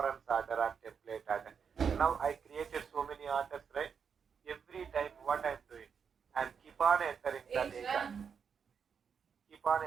order or template order. Now I created so many orders, right? Every time what I'm doing, I'm keep on entering the data. Keep on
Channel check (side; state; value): left; quieter; 6.6 dB